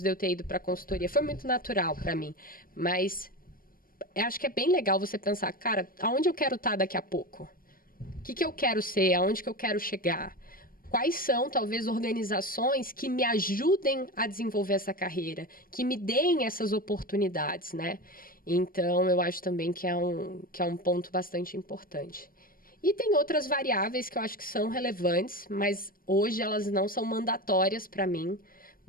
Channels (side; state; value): right; late; 0.41 ms